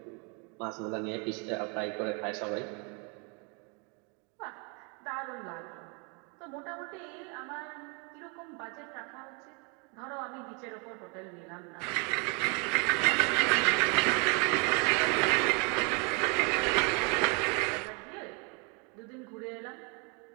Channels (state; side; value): quieter; left; 33.7 dB